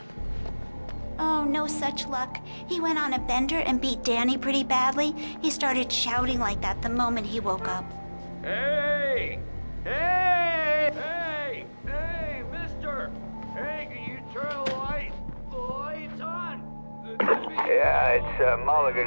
Oh, no such luck. He went on a bender and beat Danny pretty badly. He started shouting like that the moment he woke up. Hey! Hey! Hey! Hey, mister! Hey, can you turn the lights on? Yeah, it's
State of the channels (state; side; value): inverted; both; correlation -1.00